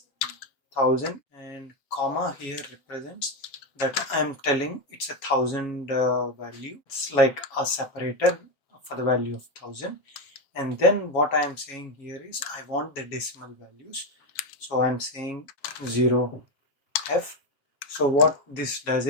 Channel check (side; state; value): right; late; 7.2 ms